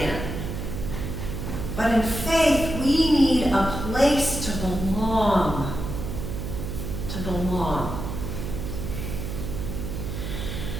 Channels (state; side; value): noise; right; hum, 5 dB below the sound